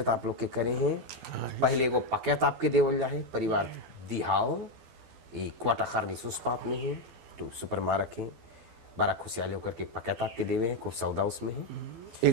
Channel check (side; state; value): left; late; 12 ms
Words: आप लोग के करे हैं। पहले को पकैत आपके देवल जाए परिवार दिहाओ ये क्वाटा खारनी सुस्पात में है तो सुपर मारक है बड़ा खुशहाली होकर के पकैत आपके देवे हैं खूब सौदा उसमें है।